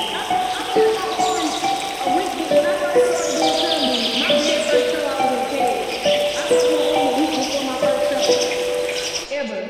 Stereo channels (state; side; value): identical; both; correlation 1.00